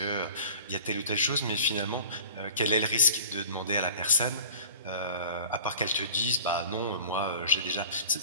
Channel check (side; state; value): both; inverted; correlation -0.41